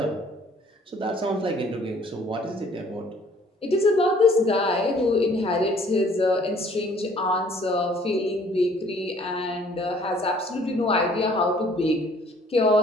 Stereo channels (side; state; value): both; normal; correlation 0.58